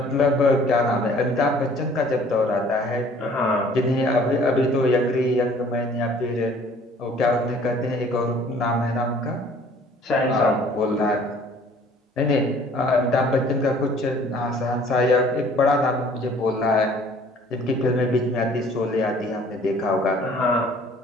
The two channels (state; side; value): normal; both; correlation 0.55